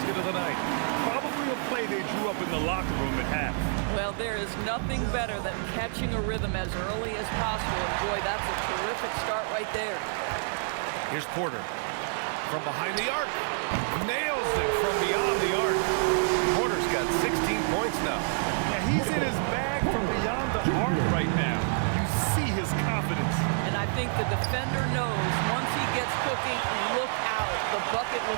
of the night. Probably a play they drew up in the locker room at half. Well, there is nothing better than catching a rhythm as early as possible, and boy, that's a terrific start right there. Here's Porter. From behind the arc. Nails it from beyond the arc. Porter's got 16 points now. Now he's in his bag from beyond the arc right now. You see his confidence. And I think the defender knows once he gets cooking, look out. The bucket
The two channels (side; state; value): left; silent; digital silence